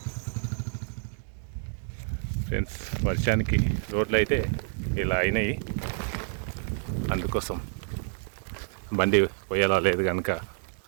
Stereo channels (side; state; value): left; silent; digital silence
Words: ఫ్రెండ్స్, వర్షానికి రోడ్లు అయితే ఇలా అయినాయి. అందుకోసం బండి పోయేలా లేదు కనుక